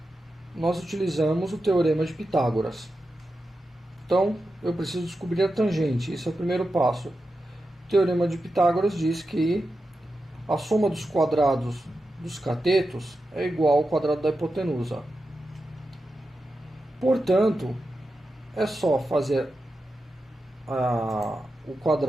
nós utilizamos o teorema de Pitágoras. Então, eu preciso descobrir a tangente. Esse é o primeiro passo. O teorema de Pitágoras diz que a soma dos quadrados dos catetos é igual ao quadrado da hipotenusa. Portanto, é só fazer o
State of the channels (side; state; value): both; normal; correlation 0.90